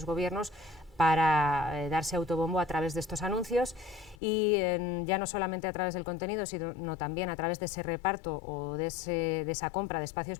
gobiernos para darse autobombo a través de estos anuncios y ya no solamente a través del contenido, sino también a través de ese reparto o de esa compra de espacios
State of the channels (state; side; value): drops out; right; at 4.2 s